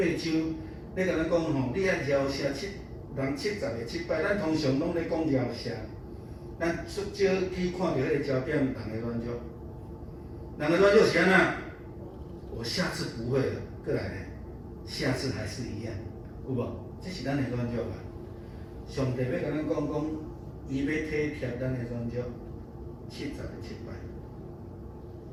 章，咧甲咱讲吼，你爱饶赦人70个7摆，咱通常拢咧讲饶赦，咱少去看到迄个焦点，人的软弱。人的软弱是安怎？我下次不会了，过来咧，下次还是一样，有无？这是咱的软弱啊。上帝要甲咱讲，伊要体贴咱的软弱，70个7摆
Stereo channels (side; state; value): both; identical; correlation 1.00